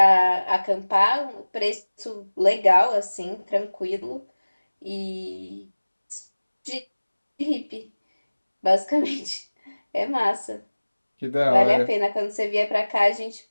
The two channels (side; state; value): both; inverted; correlation -1.00